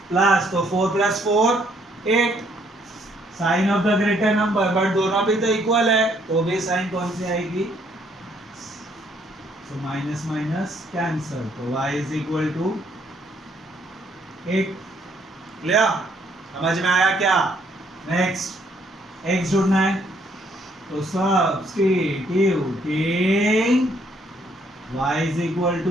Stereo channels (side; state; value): both; normal; correlation 0.68